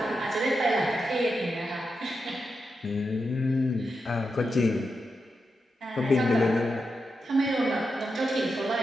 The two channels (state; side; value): normal; both; correlation 0.87